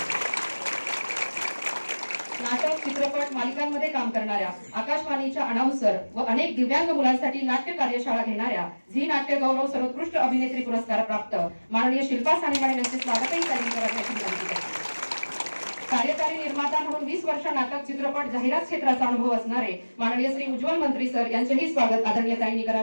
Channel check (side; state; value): both; inverted; correlation -1.00